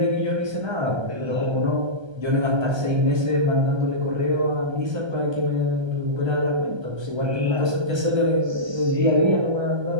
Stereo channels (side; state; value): left; late; 1.3 ms